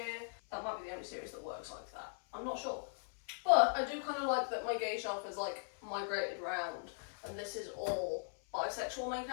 That might be the only series that works like that. I'm not sure. But I do kind of like that my gay shelf is like migrated round, and this is all bisexual main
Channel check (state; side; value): silent; right; 52 dB below the other